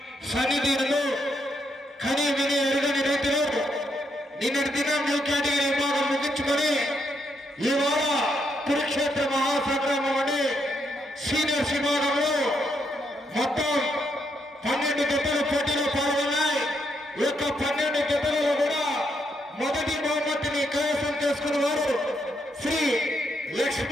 సన్నిధిలో కని విని ఎరుగని రీతిలో నిన్నటి దినం న్యూ కేటగిరీ విభాగం ముగించుకొని ఇవాళ కురుక్షేత్ర మహాసంగ్రామం అని సీనియర్స్ విభాగంలో మొత్తం 12 జతలు పోటీలో పాల్గొన్నాయి. ఈ యొక్క 12 జతలలో కూడా మొదటి బహుమతిని కైవసం చేసుకున్న వారు శ్రీ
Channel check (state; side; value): normal; both; correlation 0.77